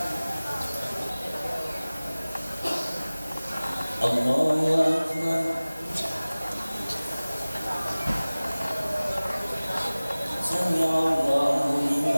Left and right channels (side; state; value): both; inverted; correlation -0.99